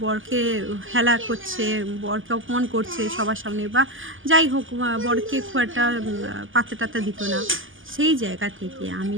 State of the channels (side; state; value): left; late; 0.58 ms